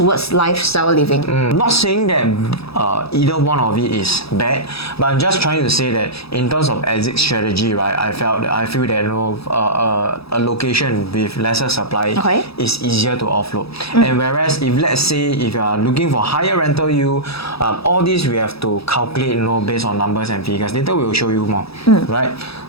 lifestyle living. Not saying that either one of it is bad, but I'm just trying to say that in terms of exit strategy, right, I feel that, you know, a location with lesser supply is easier to offload. And whereas if let's say if you are looking for higher rental yield, all these we have to calculate, you know, based on numbers and figures. Later we will show you more, right?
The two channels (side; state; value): right; late; 0.77 ms